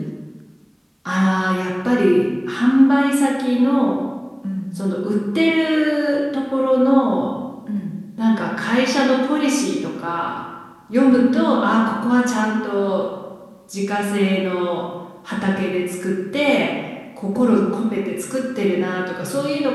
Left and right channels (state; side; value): identical; both; correlation 1.00